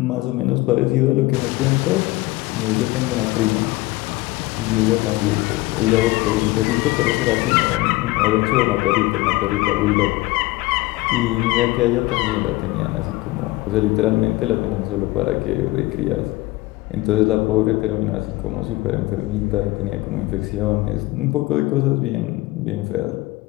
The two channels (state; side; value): quieter; right; 20.1 dB